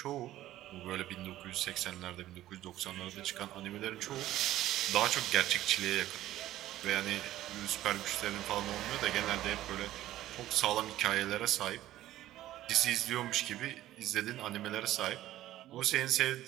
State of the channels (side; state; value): left; quieter; 14.3 dB